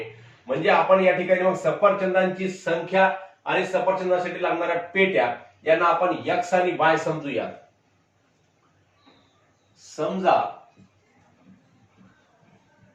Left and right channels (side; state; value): both; identical; correlation 1.00